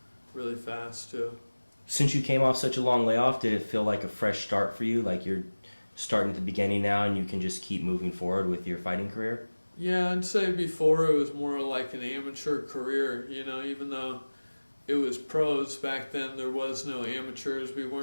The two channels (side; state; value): both; inverted; correlation -1.00